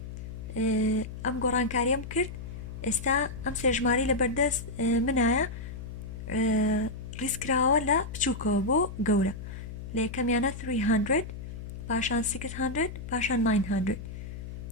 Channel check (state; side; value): noise; left; hum, 9 dB below the sound